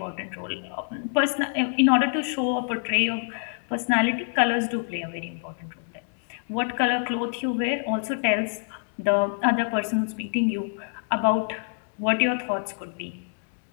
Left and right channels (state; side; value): silent; right; digital silence